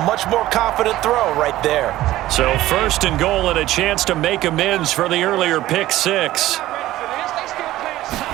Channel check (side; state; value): left; quieter; 15.5 dB